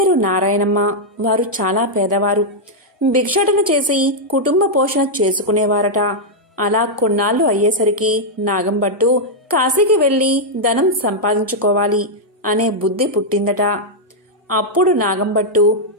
నారాయణమ్మ. వారు చాలా పేదవారు. భిక్షాటన చేసి కుటుంబ పోషణ చేసుకునేవారట. అలా కొన్నాళ్లు అయ్యేసరికి నాగంభట్టు కాశీకి వెళ్లి ధనం సంపాదించుకోవాలి అనే బుద్ధి పుట్టిందట. అప్పుడు నాగంభట్టు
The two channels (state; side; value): normal; both; correlation -0.04